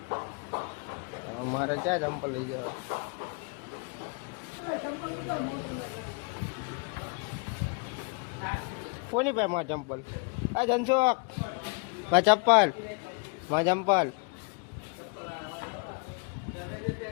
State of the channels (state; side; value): quieter; right; 34.4 dB